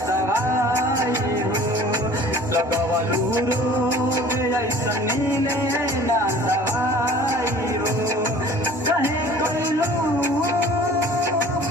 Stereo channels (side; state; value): both; normal; correlation 0.47